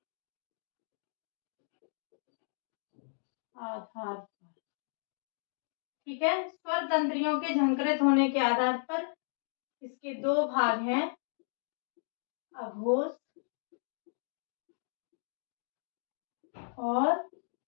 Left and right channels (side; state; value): right; silent; digital silence